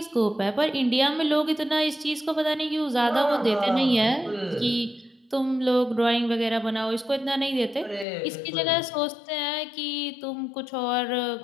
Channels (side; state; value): right; drops out; at 8.1 s